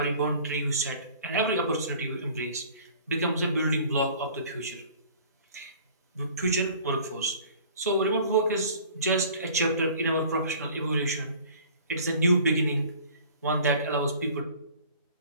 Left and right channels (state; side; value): inverted; both; correlation -0.48